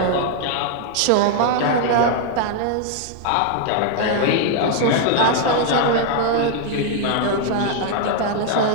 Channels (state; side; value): different; both; correlation 0.00